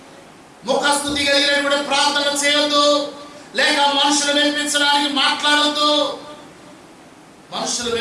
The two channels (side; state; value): both; identical; correlation 1.00